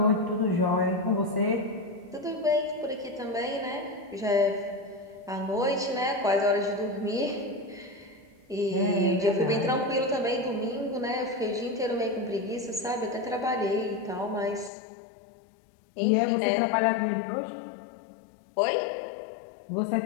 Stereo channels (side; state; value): right; drops out; at 14.7 s